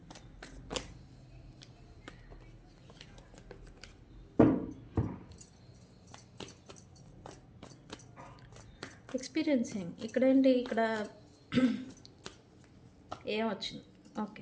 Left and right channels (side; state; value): both; identical; correlation 1.00